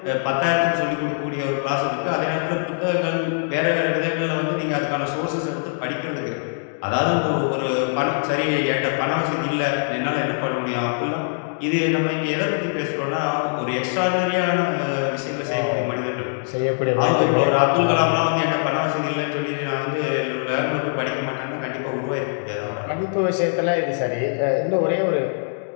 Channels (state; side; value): silent; right; digital silence